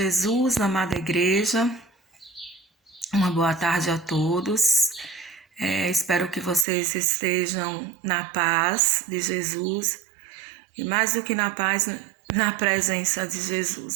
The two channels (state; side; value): drops out; left; at 6.7 s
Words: amada igreja, uma boa tarde a todos. Espero que vocês estejam na paz de Jesus e mais do que na paz, na presença de